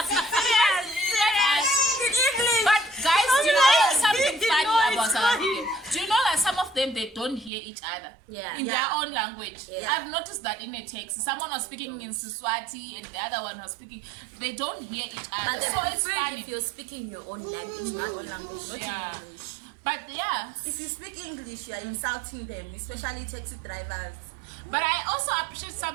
But guys, do you know something funny about South Africa? Do you know that some of them, they don't hear each other in their own language? Yeah. I've noticed that in a text, someone was speaking in Siswati and the other one was speaking, they don't hear each other. But So it's prefer funny. if you're speaking your own language, not own language, not Yeah. English. But yeah, If you speak English, you're insulting them, especially taxi drivers. but I also appreciate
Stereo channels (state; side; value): drops out; left; at 7.5 s